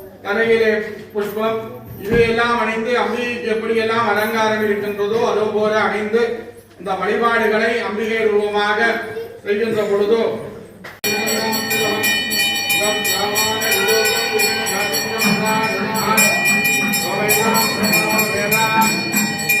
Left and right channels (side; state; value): both; identical; correlation 1.00